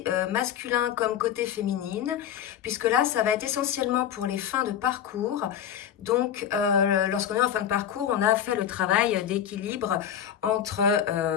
masculin comme côté féminine, puisque là, ça va être essentiellement pour les fins de parcours. Donc, lorsqu'on est en fin de parcours, on a fait le travail d'équilibre entre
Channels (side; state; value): right; quieter; 9.5 dB